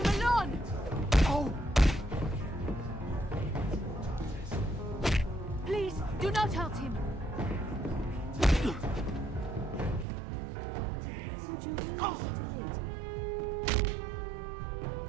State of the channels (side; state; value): left; drops out; at 10.1 s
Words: alone! Oh! Please, do not hurt him! Would you really hurt a lady?